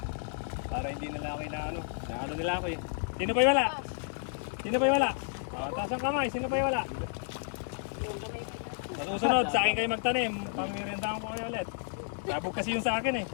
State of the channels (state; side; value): silent; right; 57 dB below the other